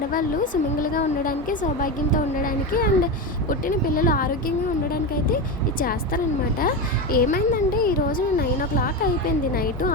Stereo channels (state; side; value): normal; both; correlation 0.17